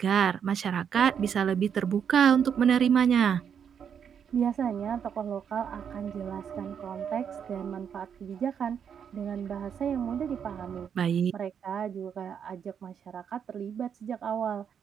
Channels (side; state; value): left; quieter; 7.8 dB